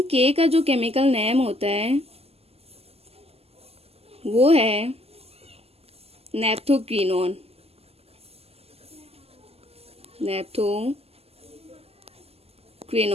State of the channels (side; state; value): left; late; 0.29 ms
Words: के का जो केमिकल नेम होता है वो है नेप्थोक्विनोन। नेप्थोक्विनोन।